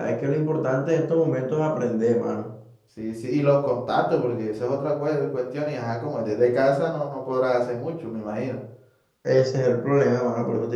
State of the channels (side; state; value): both; identical; correlation 1.00